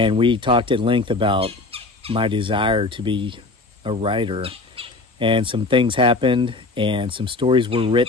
we talked at length about my desire to be a writer. And some things happened, and some stories were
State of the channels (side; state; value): right; quieter; 3.3 dB